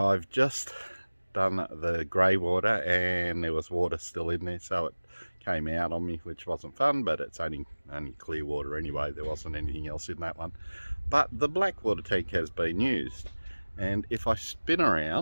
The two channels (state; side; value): inverted; both; correlation -1.00